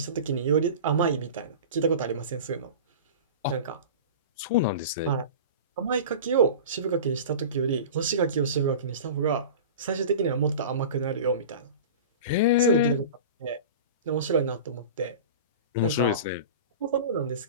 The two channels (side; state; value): both; inverted; correlation -0.34